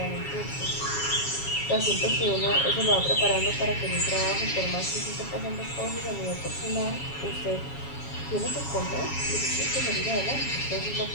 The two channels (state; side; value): late; right; 7.3 ms